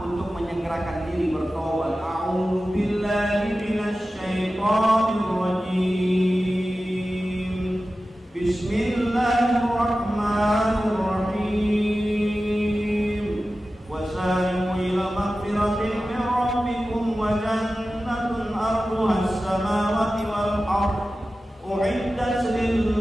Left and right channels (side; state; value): both; normal; correlation 0.94